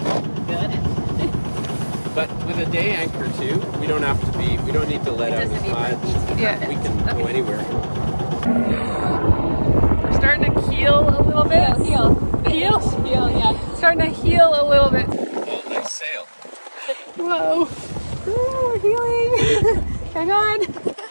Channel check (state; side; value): inverted; both; correlation -1.00